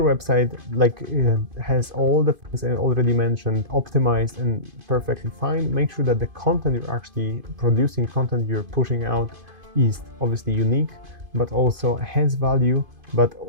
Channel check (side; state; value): left; late; 2.5 ms